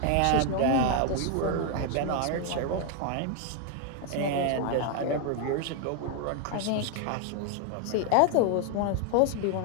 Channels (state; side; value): different; both; correlation 0.00